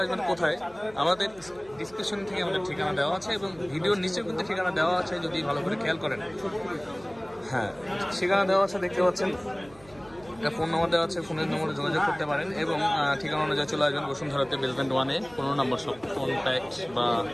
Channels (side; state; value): right; noise; hum, 24 dB below the sound